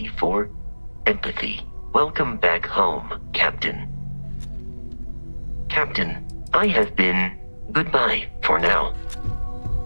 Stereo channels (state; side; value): inverted; both; correlation -1.00